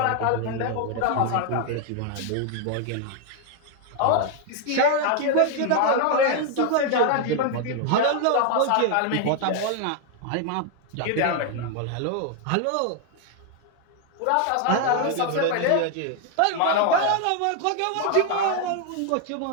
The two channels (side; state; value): both; different; correlation 0.00